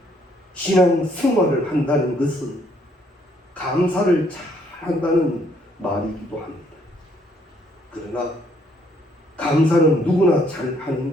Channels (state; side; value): normal; both; correlation 0.67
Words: 신앙 생활을 한다는 것은 감사를 잘 한다는 말이기도 합니다. 그러나 감사는 누구나 잘 하는